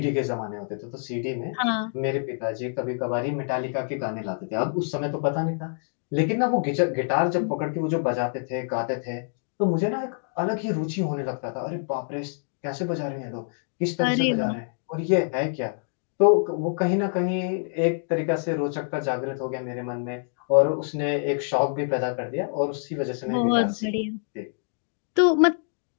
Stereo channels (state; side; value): silent; right; digital silence